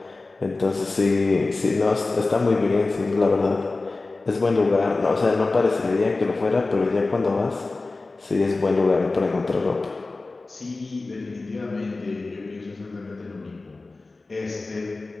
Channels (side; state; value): right; quieter; 3.4 dB